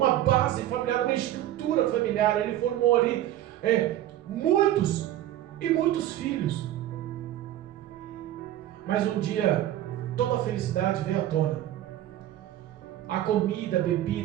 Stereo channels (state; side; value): quieter; left; 13.1 dB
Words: base familiar, uma estrutura familiar. Ele formou ali muitos e muitos filhos. Mas um dia toda a felicidade veio à tona. A comida, a